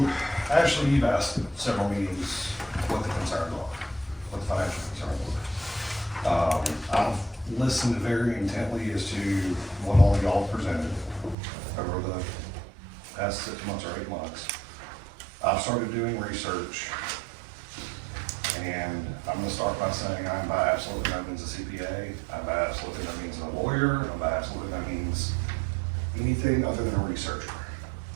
Ashley, you've asked at several meetings what the concerns are, what the financial concerns are. I've listened very intently as to what all y'all presented over the past 6 months or 8 months. I've started doing research, and I'm gonna start by saying I'm by absolutely no means a CPA, I'm by absolutely no means a lawyer, I'm by absolutely no means anything other than a researcher.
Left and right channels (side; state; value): left; drops out; at 11.4 s